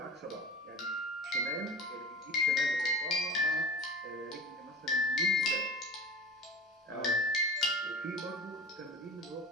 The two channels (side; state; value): both; normal; correlation 0.36